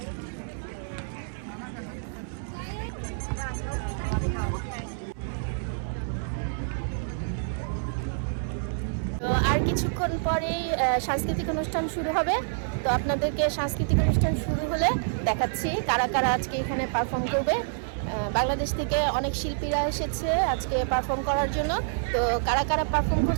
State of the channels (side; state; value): left; silent; 60 dB below the other